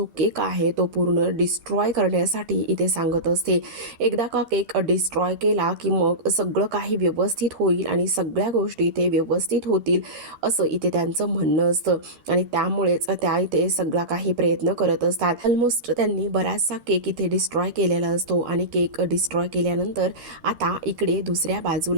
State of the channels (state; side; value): late; left; 13 ms